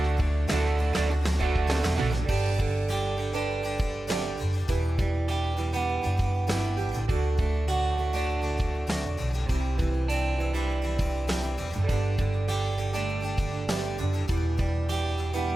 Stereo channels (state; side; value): normal; both; correlation 0.94